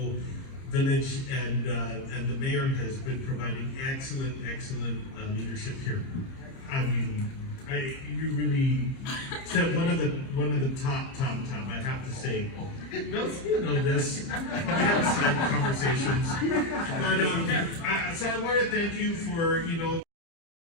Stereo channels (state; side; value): late; right; 30 ms